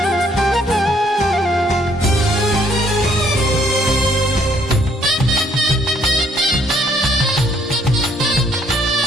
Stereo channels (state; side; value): normal; both; correlation 0.66